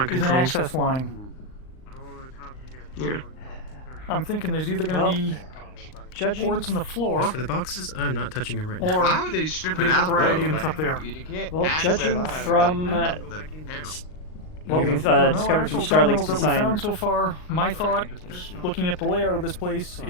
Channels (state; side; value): late; right; 39 ms